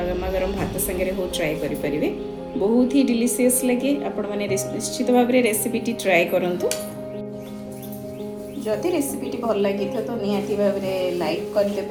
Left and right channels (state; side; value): identical; both; correlation 1.00